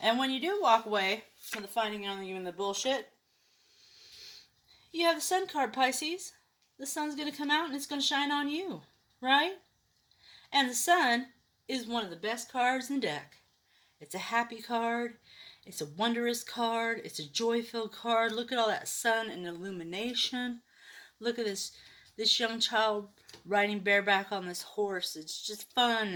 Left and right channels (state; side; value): identical; both; correlation 1.00